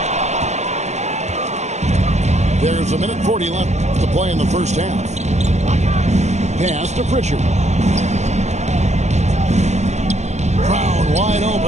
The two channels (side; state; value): left; late; 0.33 ms